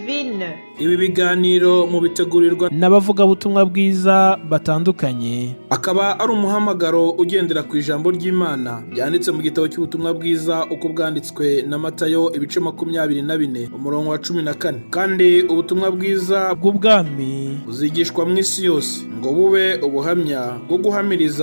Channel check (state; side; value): inverted; both; correlation -1.00